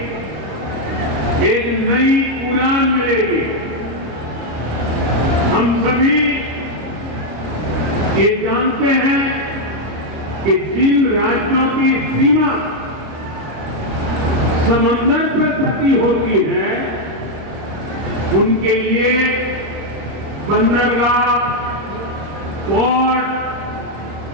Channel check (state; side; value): late; left; 26 ms